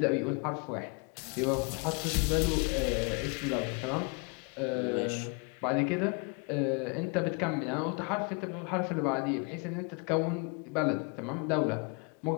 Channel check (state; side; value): quieter; right; 33.8 dB